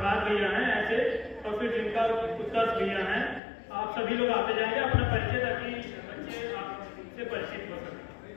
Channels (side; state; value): right; drops out; at 3.4 s